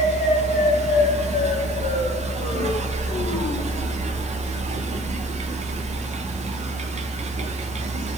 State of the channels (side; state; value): both; normal; correlation 0.52